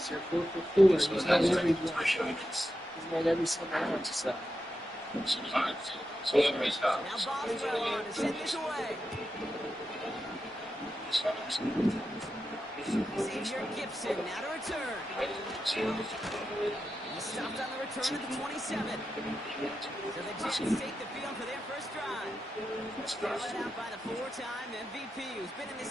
You're 4 for 4. He's made every one. He's made every single one. So. Now Boswell on to send this away. Xavier Gibson now to return. He stopped on the return at the 27. So the Jets take the field for their first drive. Led out by the 4-time MVP who's been in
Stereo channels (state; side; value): normal; both; correlation 0.89